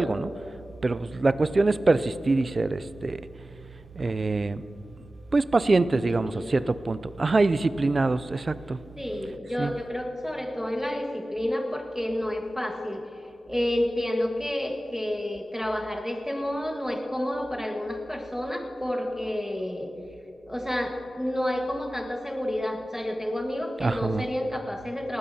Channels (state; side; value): normal; both; correlation 0.96